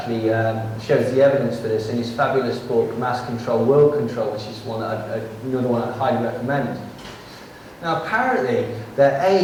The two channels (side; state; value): both; identical; correlation 1.00